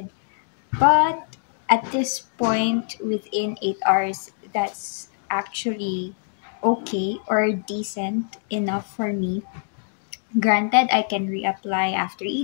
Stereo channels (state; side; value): silent; right; digital silence